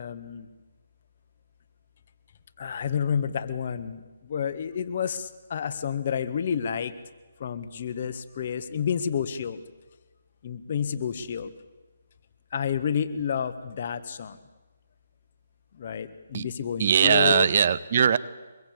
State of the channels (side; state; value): both; inverted; correlation -0.67